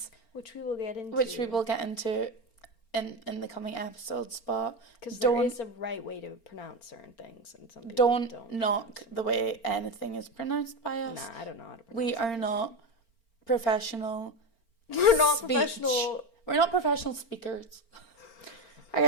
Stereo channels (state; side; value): late; right; 4.4 ms